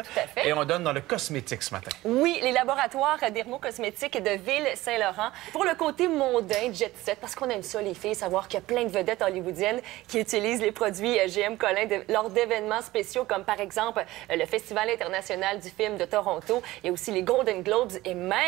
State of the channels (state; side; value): quieter; left; 17.7 dB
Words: à fait. Et on donne dans le cosmétique ce matin. Oui, les laboratoires dermocosmétiques de Ville-Saint-Laurent. Pour le côté mondain, jet set, parce qu'on aime ça, les filles, savoir qu'il y a plein de vedettes hollywoodiennes qui utilisent les produits GM Collin lors d'événements spéciaux, comme par exemple le Festival international du film de Toronto. Il y a aussi les Golden Globes et